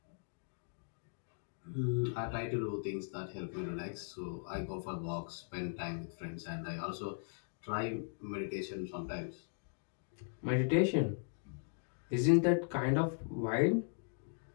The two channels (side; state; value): right; silent; digital silence